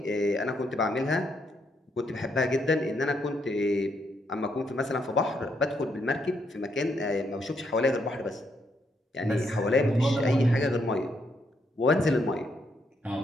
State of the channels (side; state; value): both; normal; correlation 0.76